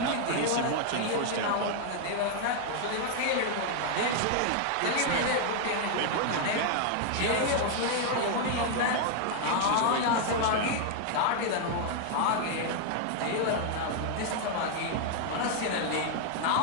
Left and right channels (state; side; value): different; both; correlation 0.00